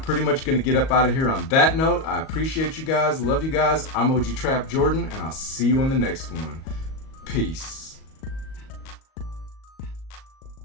much going to get up out of here on that note. I appreciate you guys. Love you guys. I'm OG Trap Jordan, and I'll see you on the next one. Peace.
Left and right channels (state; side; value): late; right; 38 ms